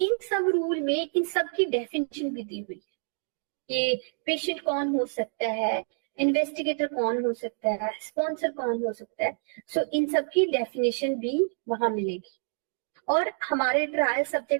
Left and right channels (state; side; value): silent; left; digital silence